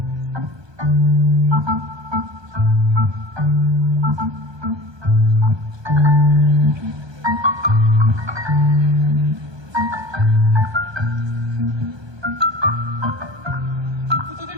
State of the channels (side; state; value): left; late; 1.2 ms